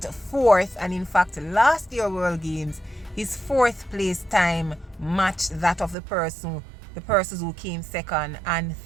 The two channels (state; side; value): drops out; left; at 6.0 s